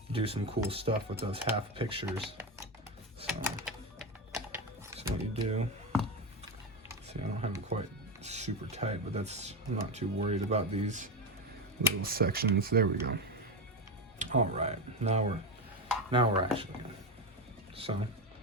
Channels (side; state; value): both; normal; correlation 0.14